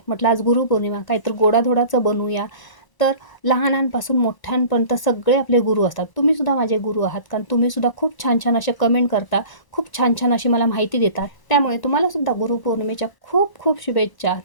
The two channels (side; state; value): right; late; 1.0 ms